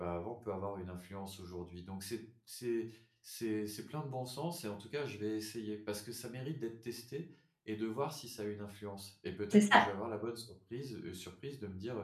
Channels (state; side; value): identical; both; correlation 1.00